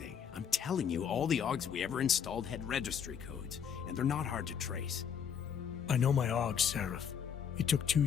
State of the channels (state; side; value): quieter; right; 7.8 dB